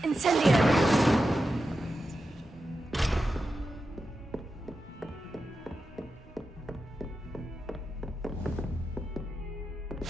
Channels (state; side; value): normal; both; correlation 0.90